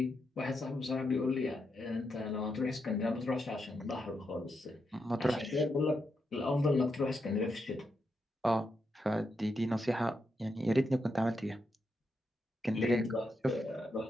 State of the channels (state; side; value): normal; both; correlation 0.83